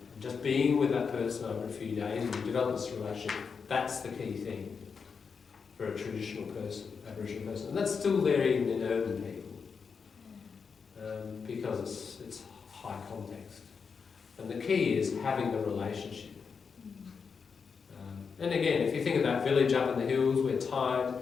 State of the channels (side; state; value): right; quieter; 5.7 dB